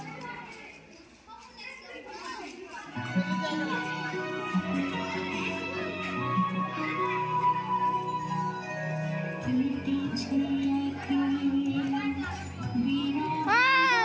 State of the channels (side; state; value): both; identical; correlation 1.00